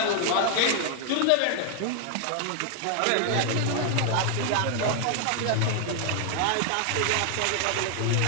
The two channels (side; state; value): both; different; correlation 0.00